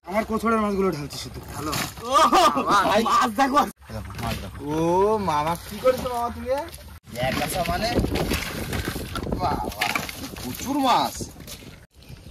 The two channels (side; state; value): both; identical; correlation 1.00